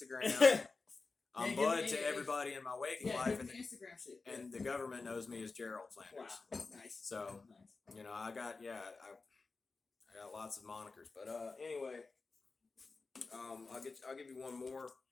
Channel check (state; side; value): quieter; right; 4.0 dB